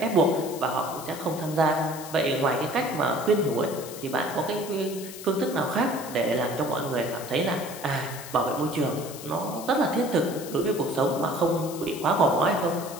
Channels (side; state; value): left; noise; hiss, 13 dB below the sound